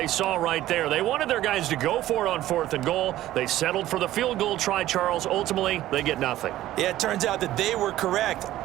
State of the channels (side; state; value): left; quieter; 14.4 dB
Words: saw right there. They wanted their guys to go for it on 4th and goal. They settled for the field goal try, Charles. Ultimately, they get nothing. Yeah, it turns out that they were correct.